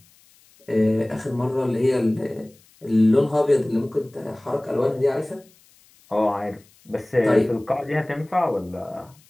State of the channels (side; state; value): left; noise; hiss, 30 dB below the sound